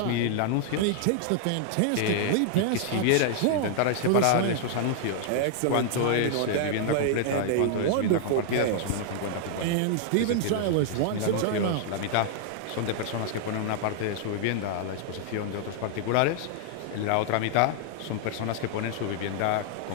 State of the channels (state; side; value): different; both; correlation -0.01